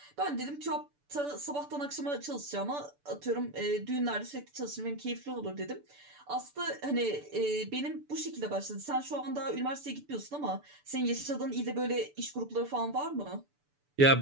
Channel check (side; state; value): left; late; 6.9 ms